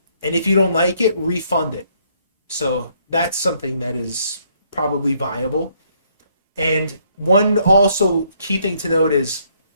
and if you don't like it, refund it. So that's something that is probably viable. And one also key thing to note is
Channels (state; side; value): inverted; both; correlation -0.69